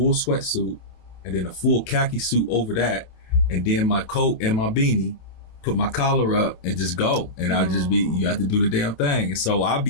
sweatsuit and then a full khaki suit over that, and then my coat and my beanie, put my collar up and just go. And you have to do the damn thing. And so I'll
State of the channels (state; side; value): late; right; 27 ms